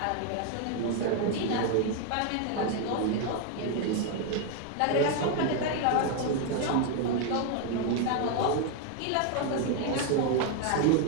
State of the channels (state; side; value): different; both; correlation 0.01